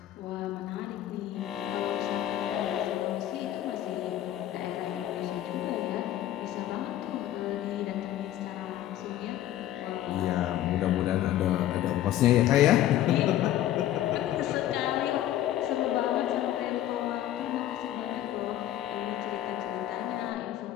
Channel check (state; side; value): quieter; right; 12.7 dB